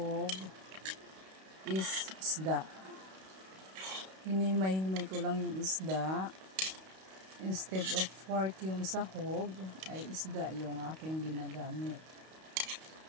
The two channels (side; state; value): left; late; 32 ms